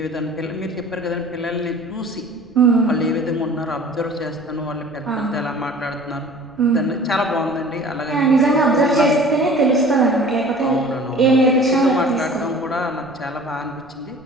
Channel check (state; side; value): noise; right; rumble, 27 dB below the sound